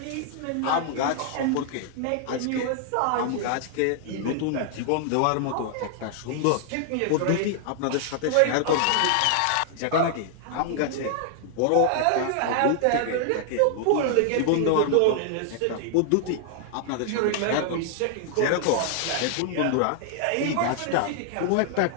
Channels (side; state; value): both; different; correlation 0.00